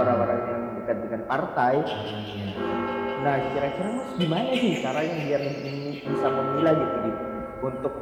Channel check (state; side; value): identical; both; correlation 1.00